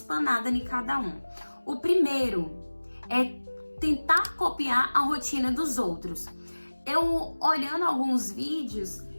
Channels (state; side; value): inverted; both; correlation -1.00